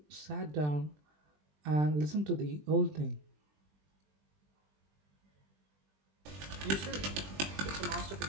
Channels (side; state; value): left; late; 20 ms